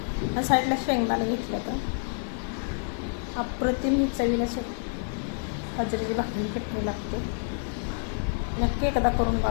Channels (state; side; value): silent; right; digital silence